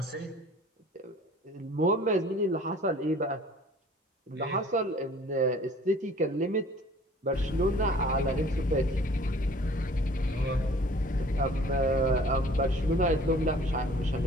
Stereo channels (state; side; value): normal; both; correlation 0.51